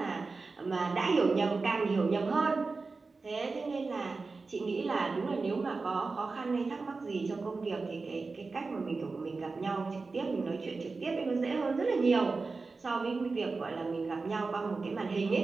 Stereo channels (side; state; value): left; quieter; 4.0 dB